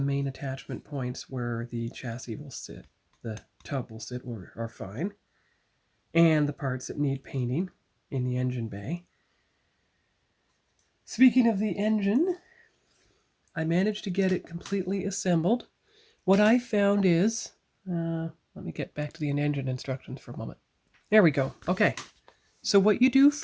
main attachment points where the chassis will sit, the tub will sit, are fine. And the parts that need painting in the engine bay. Speaking of the engine, I managed to get it completely assembled. What I found is, let me get back to the engine instructions for a moment. There we go. Okay. So what you do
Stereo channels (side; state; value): both; identical; correlation 1.00